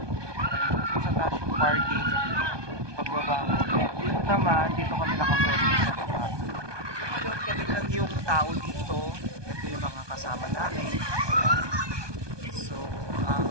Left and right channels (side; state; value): left; late; 1.2 ms